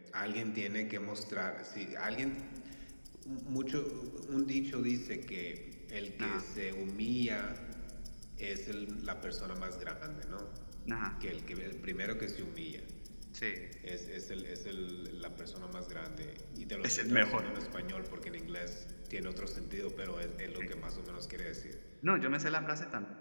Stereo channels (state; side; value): inverted; both; correlation -1.00